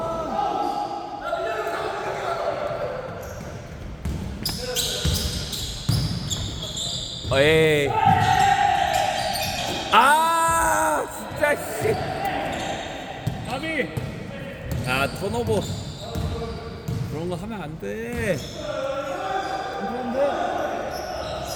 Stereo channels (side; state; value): both; identical; correlation 1.00